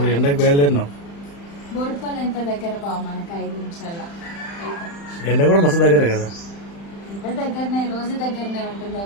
ఎండకు బయలుదేరినాం. బోడుపాలు ఎంత దగ్గర బావ మనకు 5 నిమిషాల్లో. ఎండ కూడా మస్తు దగ్గర కదా. ఎంత దగ్గరనే, రోజు దగ్గరనే ఉంటుంది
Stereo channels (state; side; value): late; right; 35 ms